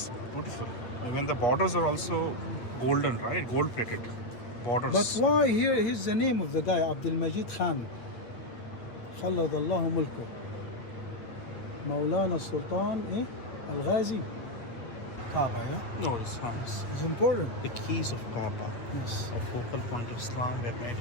beautiful. Even the borders are also golden, right? Gold plated borders. But why here? Here's the name of the guy, Abdul Majid Khan. خلد الله ملكه. مولانا السلطان Al-Ghazi. Kaaba, No, it's important. the keys of Kaaba. Yes. A focal point of Islam were made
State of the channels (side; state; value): right; late; 8.4 ms